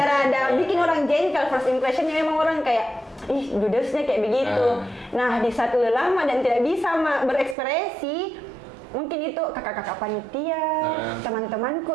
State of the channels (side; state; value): left; drops out; at 7.6 s